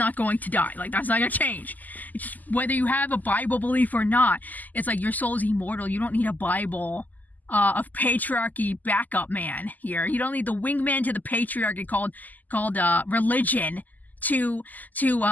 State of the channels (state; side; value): late; right; 0.082 ms